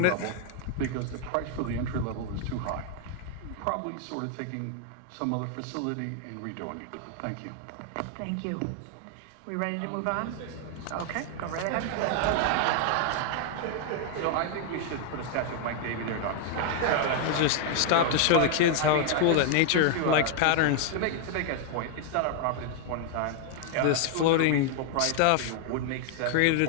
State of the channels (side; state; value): both; different; correlation 0.00